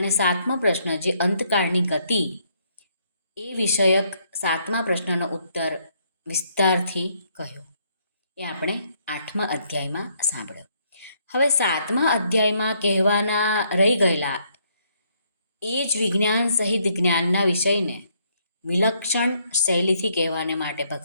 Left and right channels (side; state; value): both; inverted; correlation -0.71